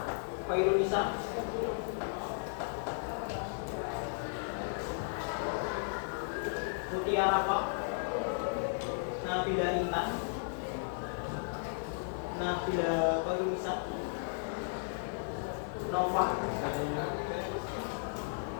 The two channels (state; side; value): silent; right; digital silence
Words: Fairunisa, Mutiara Pak, Nabila Intan, Nabila Fairunisa, Nova,